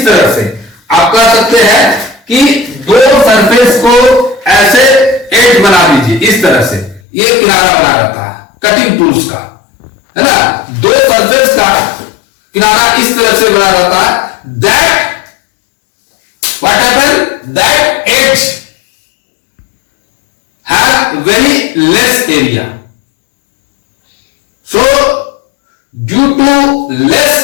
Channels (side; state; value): right; drops out; at 7.0 s